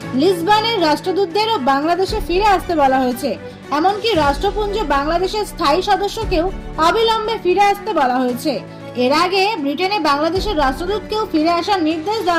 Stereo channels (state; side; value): identical; both; correlation 1.00